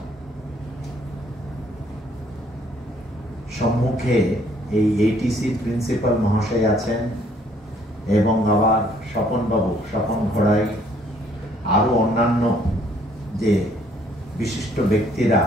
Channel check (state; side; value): normal; both; correlation 0.63